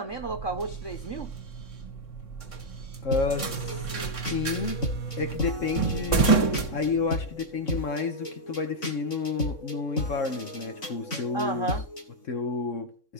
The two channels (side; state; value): right; late; 3.6 ms